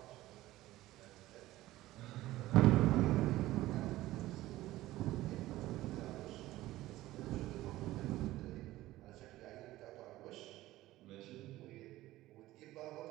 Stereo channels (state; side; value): quieter; left; 16.4 dB